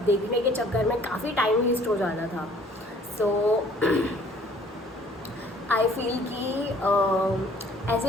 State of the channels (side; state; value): both; normal; correlation 0.56